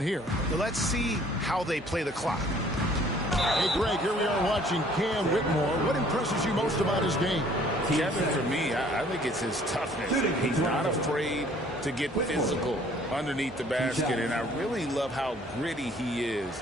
here. Let's see how they play the clock. Hey, Greg, here we are watching Cam Whitmore. What impresses you most about his game? Kevin, for me, I think it's his toughness. He's not afraid to get physical underneath the basket, and I really love how gritty he is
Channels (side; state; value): both; normal; correlation 0.57